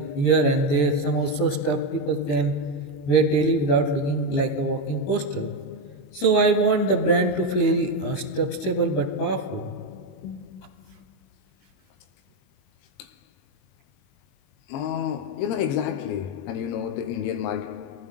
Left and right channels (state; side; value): late; right; 22 ms